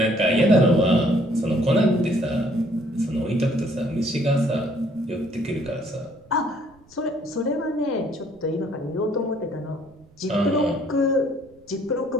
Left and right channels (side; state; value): right; noise; rumble, 29 dB below the sound